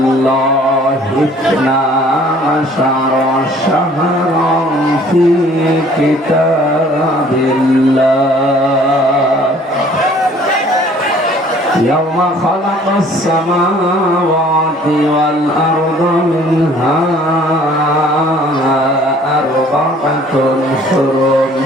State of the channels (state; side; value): normal; both; correlation 0.55